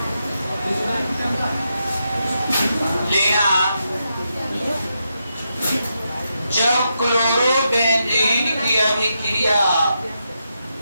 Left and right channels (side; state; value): both; inverted; correlation -0.84